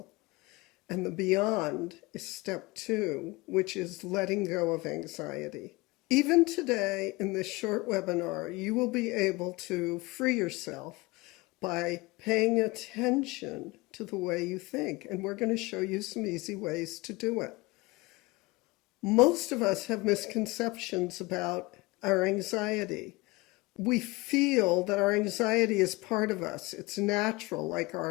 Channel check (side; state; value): right; quieter; 23.0 dB